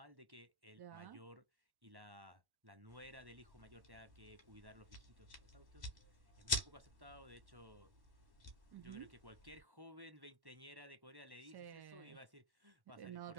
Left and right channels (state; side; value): late; left; 1.1 ms